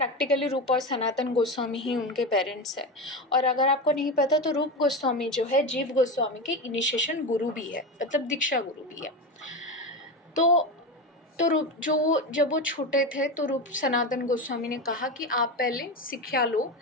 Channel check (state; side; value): normal; both; correlation 0.19